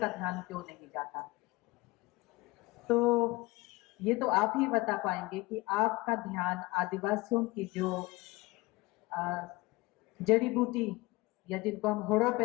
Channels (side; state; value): right; quieter; 22.1 dB